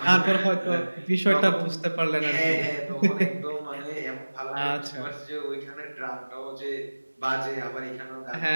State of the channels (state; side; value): inverted; both; correlation -1.00